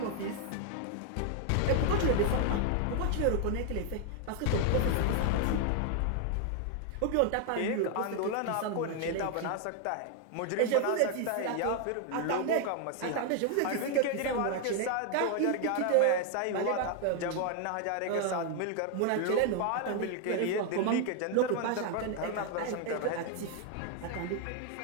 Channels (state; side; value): different; both; correlation 0.00